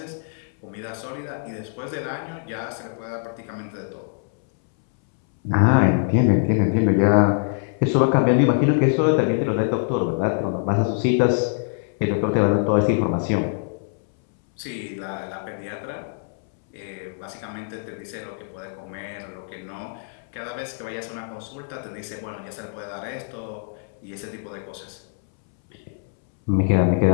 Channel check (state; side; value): silent; right; 63 dB below the other